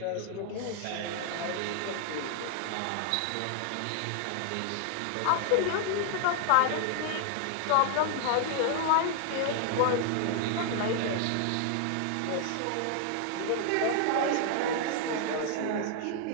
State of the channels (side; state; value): both; different; correlation 0.00